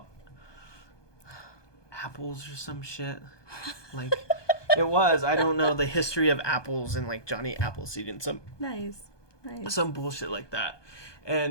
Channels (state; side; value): late; right; 1.2 ms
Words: apples or some shit. Like, it was. I don't know the history of apples and, like, Johnny Appleseed and some some bullshit like that.